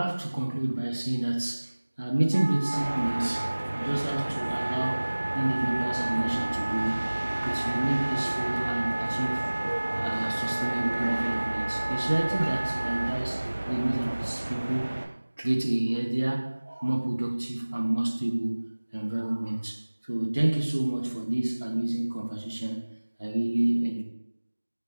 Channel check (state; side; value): inverted; both; correlation -1.00